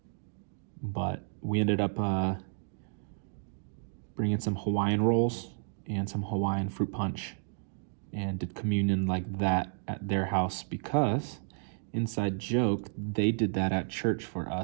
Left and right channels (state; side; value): silent; left; digital silence